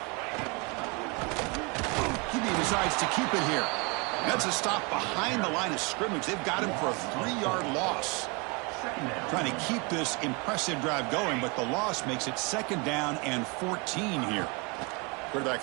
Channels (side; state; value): left; quieter; 29.7 dB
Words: QB decides to keep it here. That's a stop behind the line of scrimmage. They've got him for a 3-yard loss. Trying to keep this impressive drive going, but the loss makes it 2nd down and 14 here.